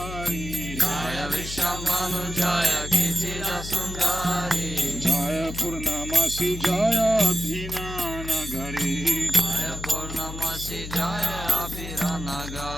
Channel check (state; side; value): noise; left; hum, 9 dB below the sound